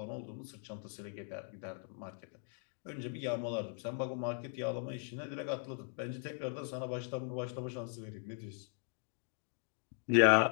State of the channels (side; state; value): right; silent; 52 dB below the other